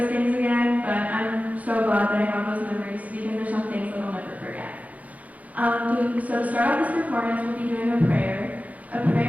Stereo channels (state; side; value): late; left; 0.072 ms